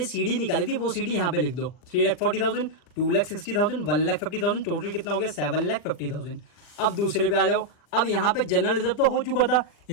सीडी निकाली थी वो सीडी यहाँ पे लिख दो। 3,40,000, 2,60,000, 1,50,000, टोटल कितना हो गया 7,50,000। अब दूसरे पे आ जाओ। अब यहाँ पे जनरल रिजर्व तो हो चुका था,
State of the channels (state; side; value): late; right; 40 ms